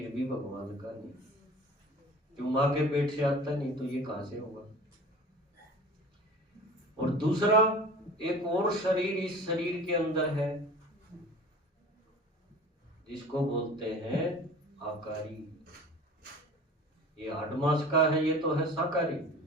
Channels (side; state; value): both; normal; correlation 0.40